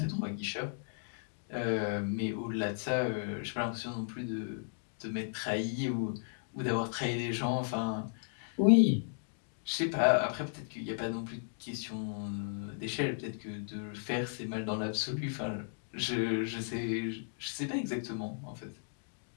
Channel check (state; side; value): silent; right; digital silence